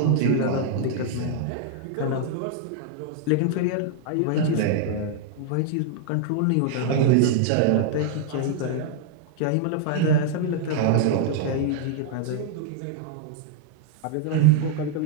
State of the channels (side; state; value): both; different; correlation -0.01